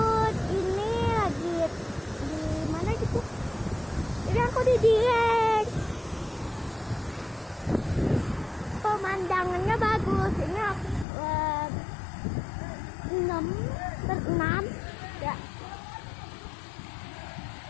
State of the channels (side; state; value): right; drops out; at 11.1 s